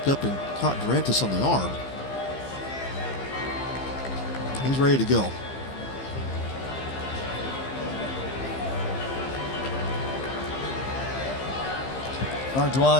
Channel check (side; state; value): right; late; 15 ms